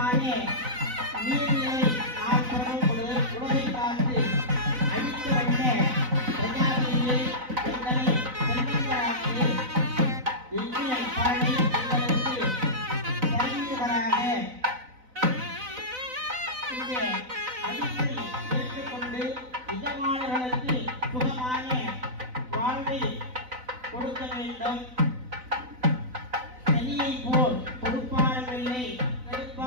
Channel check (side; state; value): left; late; 4.0 ms